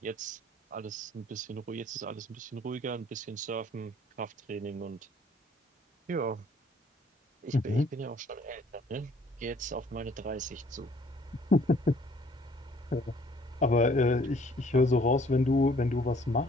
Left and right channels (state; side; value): normal; both; correlation 0.59